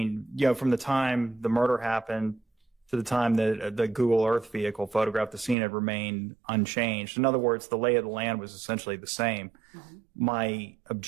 from the time the murder happened to the time that the Google Earth vehicle photographed the scene had remained unchanged. In other words, the lay of the land was essentially the same. Mm-hmm. My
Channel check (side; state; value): left; drops out; at 5.6 s